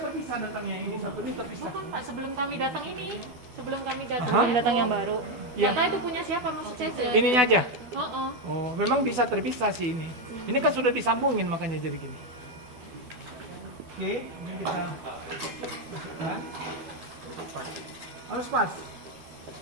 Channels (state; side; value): late; left; 12 ms